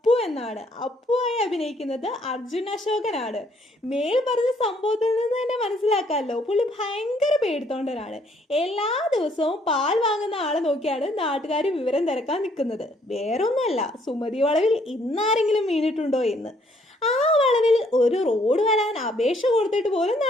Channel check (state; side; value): normal; both; correlation 0.66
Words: എന്നാണ്. അപ്പുവായി അഭിനയിക്കുന്നത് അർജുൻ അശോകനാണ്. മേൽ പറഞ്ഞ സംഭവത്തിൽ നിന്ന് തന്നെ മനസ്സിലാക്കാമല്ലോ, പുള്ളി ഭയങ്കര പേടിത്തോണ്ടനാണ്. എല്ലാ ദിവസവും പാൽ വാങ്ങുന്ന ആളെ നോക്കിയാണ് നാട്ടുകാർ വിവരം തിരക്കാൻ നിൽക്കുന്നത്. വേറൊന്നുമല്ല, സുമതി വളവിൽ ഇന്നാരെങ്കിലും വീണിട്ടുണ്ടോ എന്ന്. ആ വളവിൽ ഒരു റോഡ് വരാൻ അപേക്ഷ കൊടുത്തിട്ട് പോലും